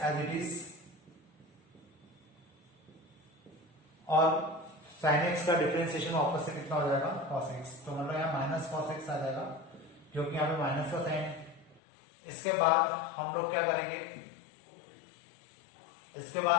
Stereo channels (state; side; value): drops out; right; at 11.8 s